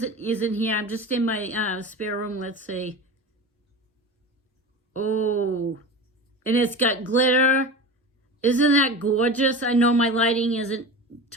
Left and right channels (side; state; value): both; normal; correlation 0.30